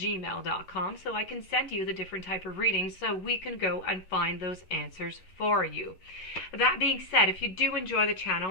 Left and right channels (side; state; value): right; late; 11 ms